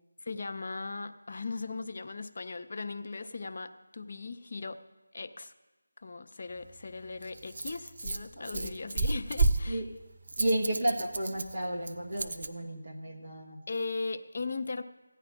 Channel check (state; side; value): inverted; both; correlation -0.85